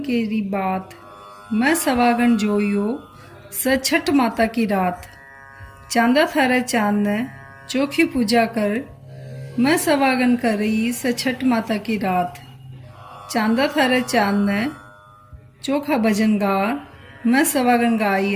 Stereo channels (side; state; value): both; identical; correlation 1.00